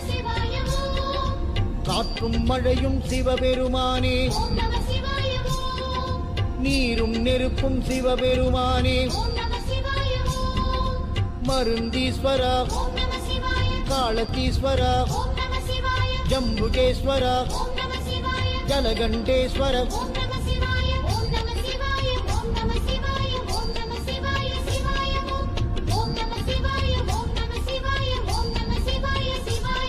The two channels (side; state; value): both; identical; correlation 1.00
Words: காற்றும் மழையும் சிவபெருமானே நீரும் நெருப்பும் சிவபெருமானே மருந்தீஸ்வர காலத்தீஸ்வர ஜம்புகேஸ்வர ஜலகண்டேஸ்வர